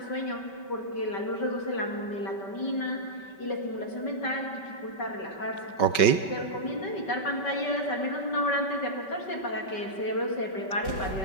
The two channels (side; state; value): right; late; 5.2 ms